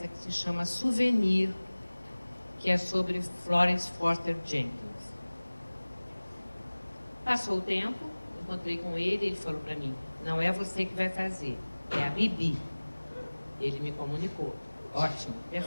que se chama Souvenir, que é sobre Florence Foster Jenkins. Passou o tempo, encontrei com ele falou para mim, não é você que vai fazer, é a Bibi. Ele me comunicou. Ótimo,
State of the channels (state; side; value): inverted; both; correlation -1.00